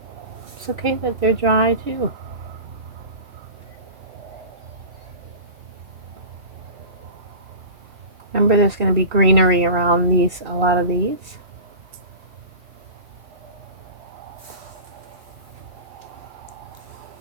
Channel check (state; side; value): late; left; 2.7 ms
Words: It's okay that they're dry too. Remember, there's going to be greenery around a lot of these.